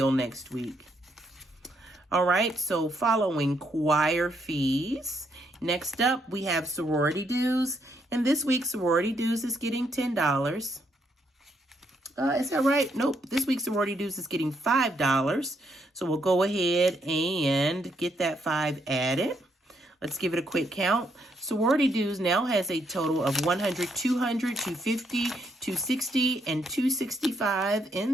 next week. All right, so following choir fees. Next up, we have sorority dues. And this week, sorority dues is getting $10. Is that right? Nope. This week's sorority dues is getting $5. So we'll go ahead and get that 5 added. Let's give it a quick count. Sorority dues now has a total of 100, 200, 250, 260, and 265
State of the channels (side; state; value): both; normal; correlation 0.75